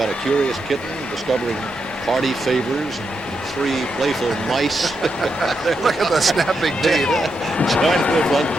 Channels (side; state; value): both; normal; correlation 0.83